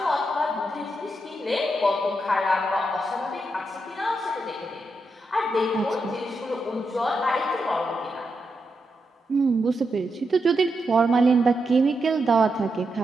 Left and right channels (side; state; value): both; normal; correlation 0.85